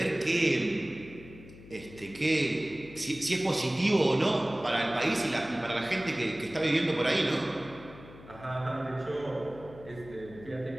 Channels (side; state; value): left; noise; hum, 18 dB below the sound